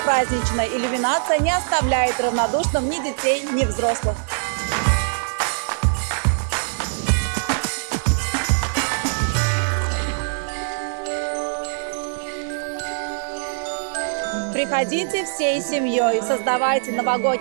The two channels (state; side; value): silent; left; digital silence